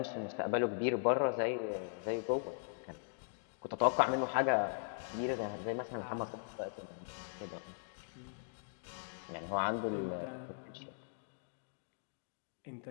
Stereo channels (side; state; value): right; silent; digital silence